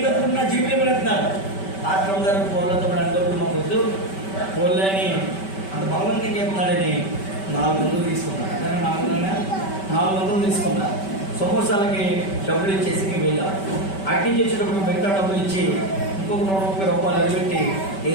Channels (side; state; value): right; late; 5.2 ms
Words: నా జీవితం పెడుతున్నాడు. ఆశ్రమం గారు పోలతో అంటప్పుడు మాకు వద్దు పోలే అని అంత బలవంతంగా చెప్తున్నాడని 400 తీసుకున్నాను. 400 తీసుకున్నా. సమోసాలకి డబ్బులు ఇచ్చేసి మేము వెళ్ళాం. అటు నుంచి వచ్చేటప్పుడు మిగతా డబ్బులు ఇచ్చి ఇంకొక 30 రూపాయలు అడిపెట్టి